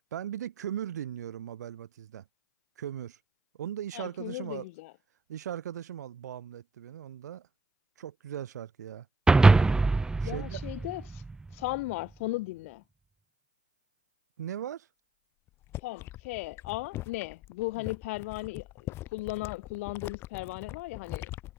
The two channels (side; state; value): both; normal; correlation 0.67